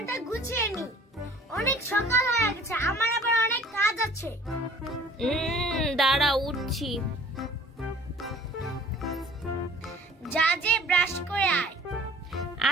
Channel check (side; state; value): both; normal; correlation 0.51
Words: গুছিয়ে নি। অনেক সকাল হয়ে গেছে, আমার আবার অনেক কাজ আছে। দাঁড়াও, উঠছি। যা যে ব্রাশ করে আয়।